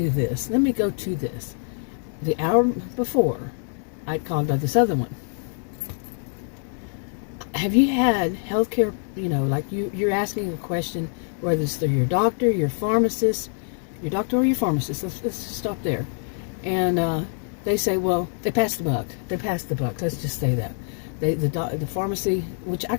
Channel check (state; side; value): silent; right; 58 dB below the other